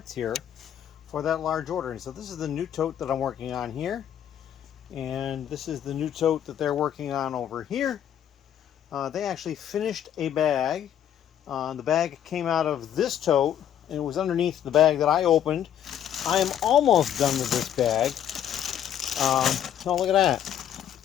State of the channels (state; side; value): quieter; right; 10.1 dB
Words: here for that large order. And so this is the new tote that I'm working on here, and this is the new tote that they're working on over here. They actually finished a bag. The bag came out of this tote, and it was underneath the bag that I opened. I am almost done with this bag. Oh, look at that.